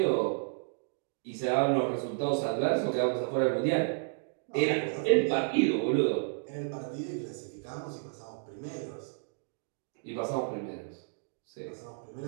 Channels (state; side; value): silent; left; digital silence